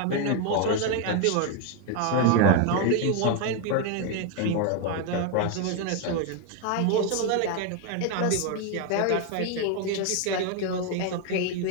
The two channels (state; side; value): different; both; correlation 0.01